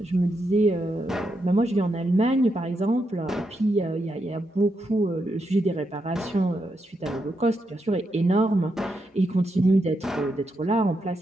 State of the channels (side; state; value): both; normal; correlation 0.83